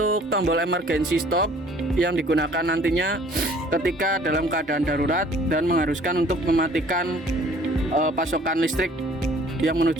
tombol emergency stop yang digunakan nantinya ketika dalam keadaan darurat dan mengharuskan untuk mematikan pasokan listrik yang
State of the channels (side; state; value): both; normal; correlation 0.54